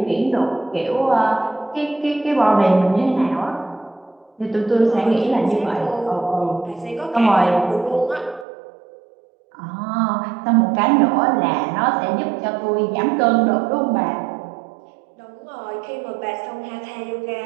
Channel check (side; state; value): left; drops out; at 8.5 s